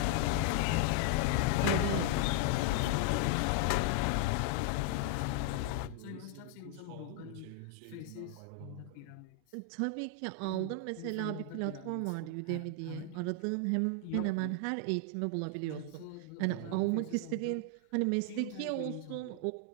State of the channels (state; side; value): different; both; correlation 0.00